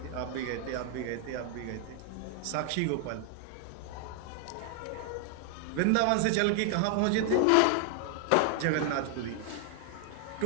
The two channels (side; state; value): both; different; correlation 0.00